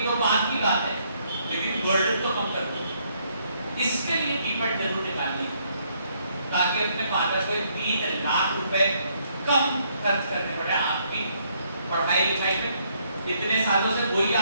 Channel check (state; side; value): inverted; both; correlation -0.70